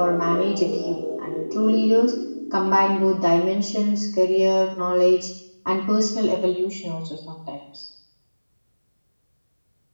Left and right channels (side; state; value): both; inverted; correlation -1.00